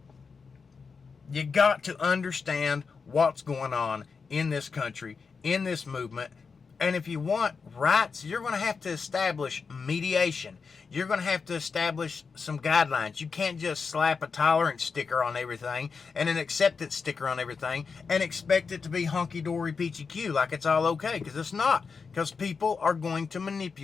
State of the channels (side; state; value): right; quieter; 5.2 dB